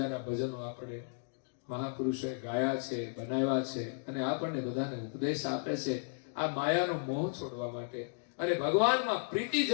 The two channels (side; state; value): right; silent; digital silence